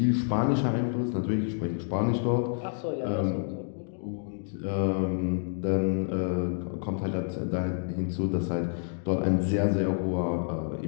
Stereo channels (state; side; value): silent; right; digital silence